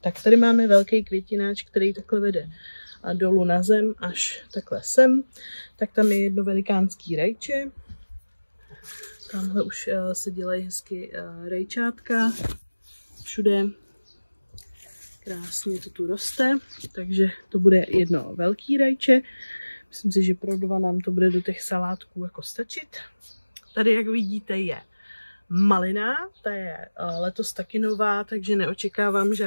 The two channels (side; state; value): both; inverted; correlation -1.00